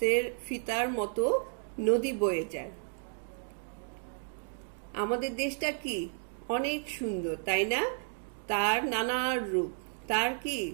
ফিতার মতো নদী বয়ে যায়। আমাদের দেশটা কি অনেক সুন্দর, তাই না? তার নানা রূপ, তার কি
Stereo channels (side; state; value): left; silent; 56 dB below the other